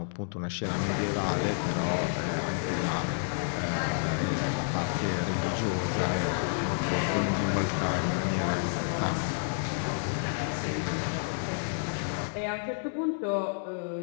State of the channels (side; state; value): right; silent; digital silence